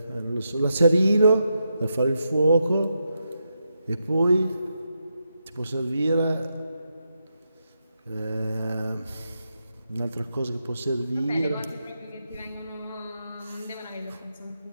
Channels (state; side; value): inverted; both; correlation -0.85